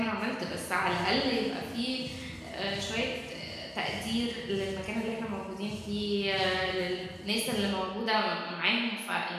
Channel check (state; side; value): identical; both; correlation 1.00